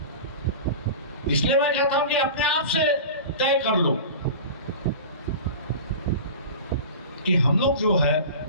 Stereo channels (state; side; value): inverted; both; correlation -0.34